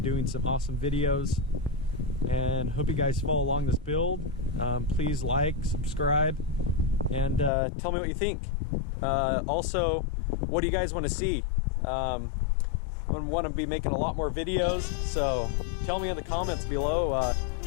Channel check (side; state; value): right; drops out; at 7.5 s